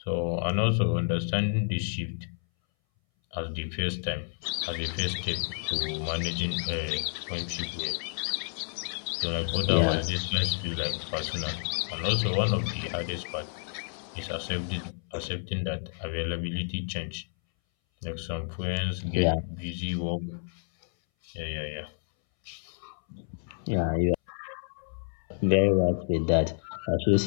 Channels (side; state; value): right; silent; 58 dB below the other